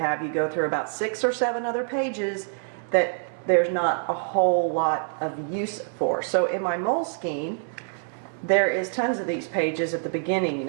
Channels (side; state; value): left; silent; 61 dB below the other